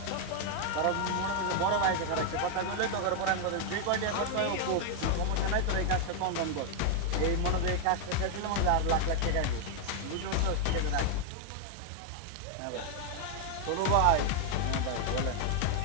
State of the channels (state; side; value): different; both; correlation 0.00